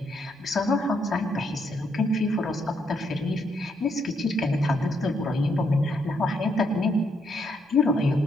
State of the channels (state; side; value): normal; both; correlation 0.76